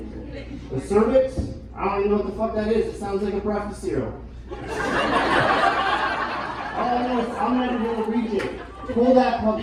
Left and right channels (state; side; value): identical; both; correlation 1.00